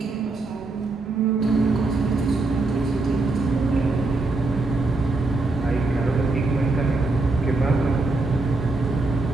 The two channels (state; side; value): quieter; left; 3.3 dB